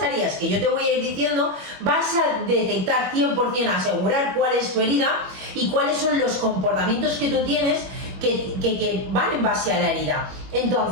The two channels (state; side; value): late; left; 21 ms